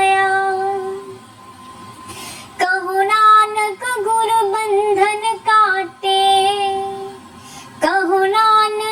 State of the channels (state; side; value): identical; both; correlation 1.00